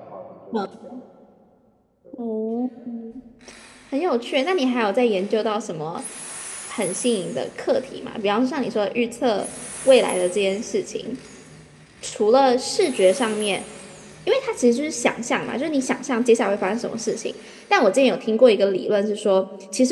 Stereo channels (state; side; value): identical; both; correlation 1.00